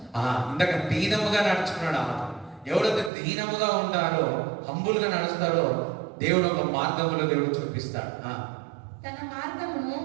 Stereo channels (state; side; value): drops out; left; at 3.1 s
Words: ఇందాక దీనముగా నడుచుకున్నాడు. ఎవరైతే దీనముగా ఉంటారో, హంబులుగా నడుస్తారో దేవుడు ఒక మార్గములో దేవుడు చూపిస్తాడు. తన మార్గమును